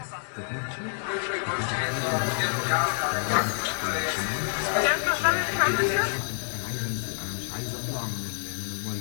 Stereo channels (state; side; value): silent; right; digital silence